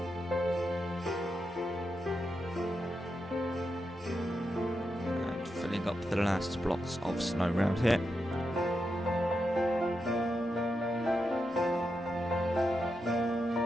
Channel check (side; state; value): both; normal; correlation 0.86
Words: Up the last blocks of snow around here.